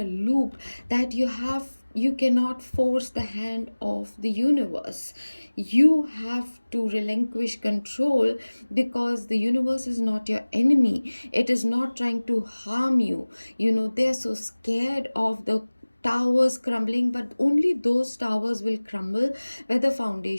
loop that you cannot force the hand of the universe. You have to relinquish control, because the universe is not your enemy. It is not trying to harm you. They're so scared of the towers crumbling, but only those towers will crumble where the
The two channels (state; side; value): inverted; both; correlation -1.00